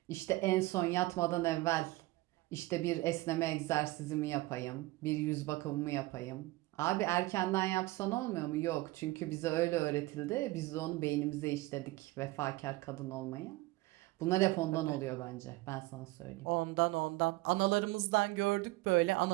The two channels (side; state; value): left; quieter; 20.1 dB